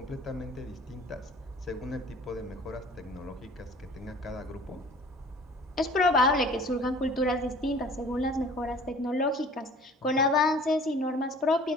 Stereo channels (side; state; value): both; normal; correlation 0.48